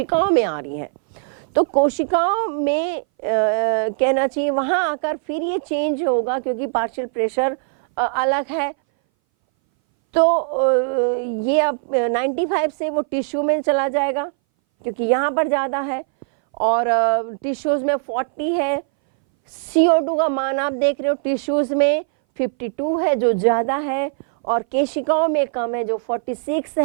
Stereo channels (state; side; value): silent; left; 61 dB below the other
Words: में आ रही है, तो कोशिकाओं में कहना चाहिए वहां आकर फिर ये चेंज होगा क्योंकि पार्शियल प्रेशर अलग है। तो ये अब 95 से वो टिश्यू में चला जाएगा क्योंकि यहाँ पर ज़्यादा है और टिश्यूज़ में 40 है। CO2 का मान आप देख रहे हो टिश्यूज़ में 52 है जो ज़्यादा है और केशिकाओं में कम है जो 46